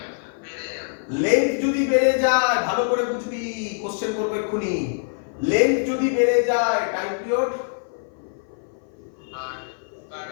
লেন্থ যদি বেড়ে যায়, ভালো করে বুঝবি, কোশ্চেন করবে এক্ষুনি, লেন্থ যদি বেড়ে যায় টাইম পিরিয়ড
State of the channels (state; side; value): silent; right; 57 dB below the other